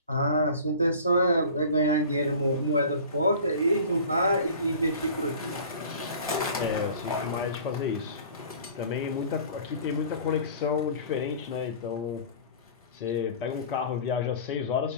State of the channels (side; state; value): both; inverted; correlation -0.42